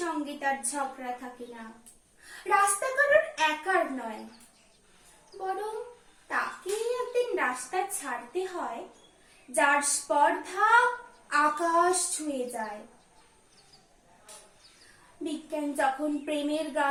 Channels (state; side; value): identical; both; correlation 1.00